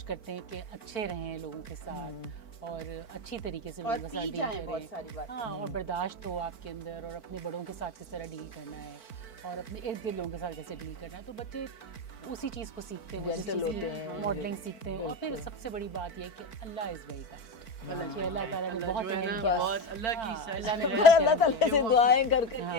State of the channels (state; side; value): late; right; 4.5 ms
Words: करते हैं कि अच्छे रहें लोगों के साथ और अच्छी तरीके से और लोगों के साथ पी डील जाएं बहुत करें, सारी बातें। हाँ, और बर्दाश्त हो आपके अंदर, और अपने बड़ों के साथ किस तरह डील करना है और अपने इर्द गिर्द लोगों के साथ कैसे डील करना है, तो बच्चे उसी चीज़ को सीखते हैं, Gentle होते हैं, मॉडलिंग सीखते हैं। और फिर बिल्कुल। सबसे बड़ी बात यह है कि अल्लाह इज़ वेरी काइंड। बच्चे अल्लाह ताला ने बहुत जो है ना बस। बहुत अल्लाह की अल्लाह ने पर अल्लाह ताला से दुआएं कर कर